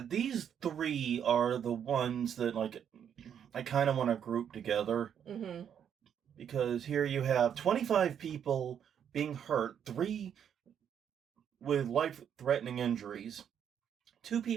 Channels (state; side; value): quieter; left; 8.6 dB